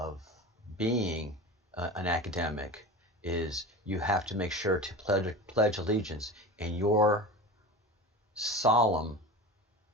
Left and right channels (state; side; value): normal; both; correlation 0.31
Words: being an academic is you have to make sure to pledge allegiance, and your solemn